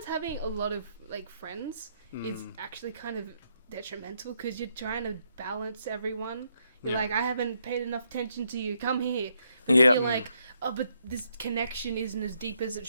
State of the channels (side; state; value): both; inverted; correlation -0.76